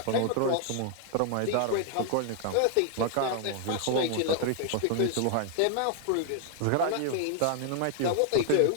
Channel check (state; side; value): different; both; correlation 0.00